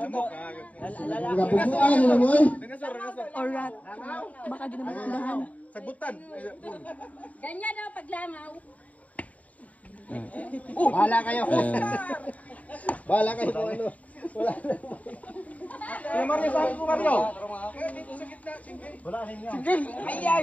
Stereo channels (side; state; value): right; late; 0.070 ms